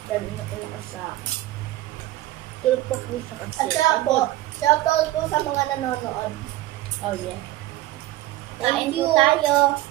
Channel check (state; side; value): quieter; left; 16.5 dB